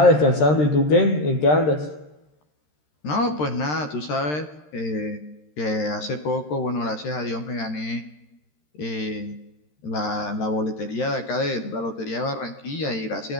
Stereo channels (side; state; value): right; late; 13 ms